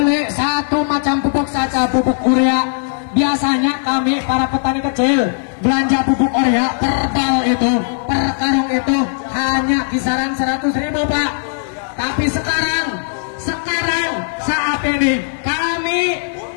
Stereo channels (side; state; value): right; silent; digital silence